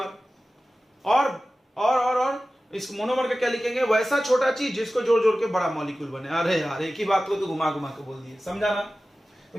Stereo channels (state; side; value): normal; both; correlation 0.95